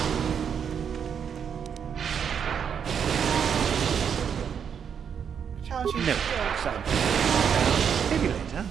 Challenge you. No, son. Maybe later.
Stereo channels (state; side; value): quieter; left; 7.5 dB